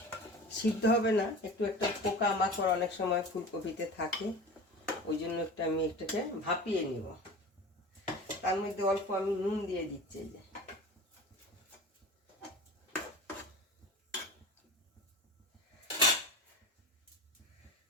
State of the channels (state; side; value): normal; both; correlation 0.34